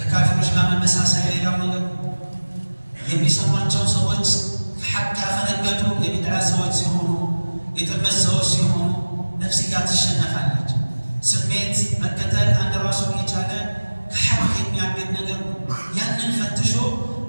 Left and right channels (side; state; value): both; inverted; correlation -1.00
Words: ጋር መመሳሰል ሌላው ነገር ነው። የሚሰሟቸው ሰዎች ሐቅ ያፈነገጡ የቢድዓ ሰዎች ሲሆኑ፣ የጥመት ሰዎች ሲሆኑ ነፍስያ ትሸነፋለች። ስሜት መከተል አንድ ራሱን የቻለ ከሐቅ የሚያገድ ነገር ነው። ያንን ፈትሾ